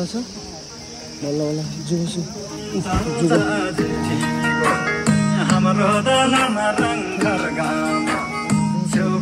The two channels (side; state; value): both; identical; correlation 1.00